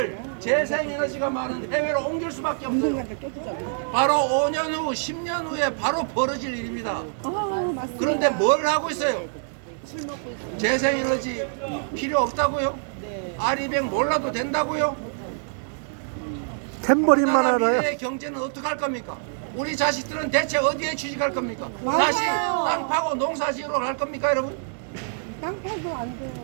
재생에너지가 많은 해외로 옮길 수밖에 없어요. 바로 5년 후, 10년 후에 바로 벌어질 일입니다. 그런데 뭘 하고 있어요? 재생에너지 필요 없다고요? 아리백 몰라도 된다고요? 탬버린만 나라 알아요. 미래의 경제는 어떻게 할 겁니까? 우리 자식들은 대체 어디에 취직할 겁니까? 다시 땅 파고 농사 지으러 갈 겁니까 여러분? 땅 파도 안 돼요.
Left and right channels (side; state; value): left; silent; digital silence